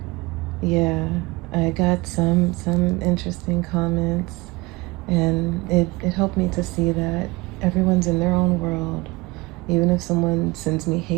yeah, I got some interesting comments, and it helped me to see that everyone's in their own world. Even if someone sends me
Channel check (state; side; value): quieter; left; 23.1 dB